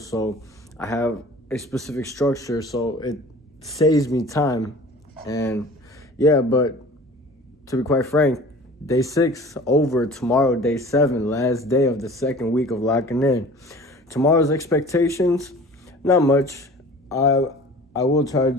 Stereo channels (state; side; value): normal; both; correlation 0.43